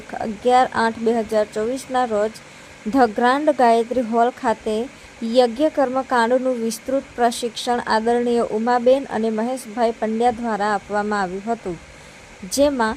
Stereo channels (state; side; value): identical; both; correlation 1.00